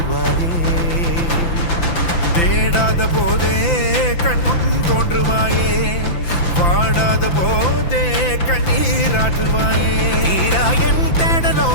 தேடாத போதே கண்முன் தோன்றுவாயே பாடாத போதே கண்ணீராற்றுவாயே என்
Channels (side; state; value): right; late; 5.9 ms